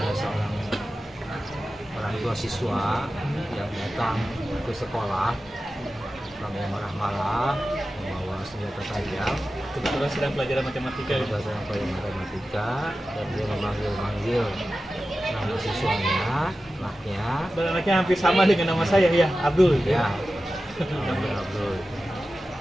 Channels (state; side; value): normal; both; correlation 0.94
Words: seorang orang tua siswa yang datang ke sekolah, orangnya marah-marah, membawa senjata tajam, Kebetulan sedang pelajaran matematika ya. berdasarkan pelajaran matematika, dan dia memanggil-manggil nama siswanya, anaknya, Dan anaknya hampir sama dengan nama saya ya, Abdul. ya, namanya Abdul.